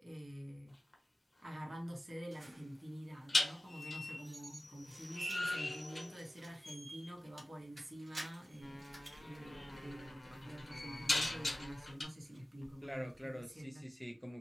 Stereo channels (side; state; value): both; normal; correlation 0.97